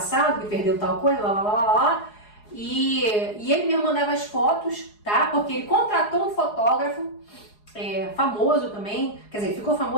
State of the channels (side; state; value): right; late; 4.8 ms